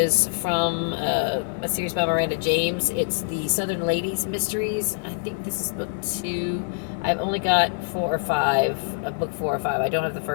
from a series by Miranda James. It's the Southern Ladies Mysteries. I think this is book 2. I've only got 4 or 5, book 4 or 5. I don't have the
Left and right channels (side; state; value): right; silent; 62 dB below the other